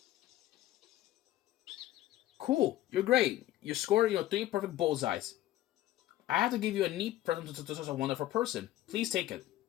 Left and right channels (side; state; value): right; quieter; 14.3 dB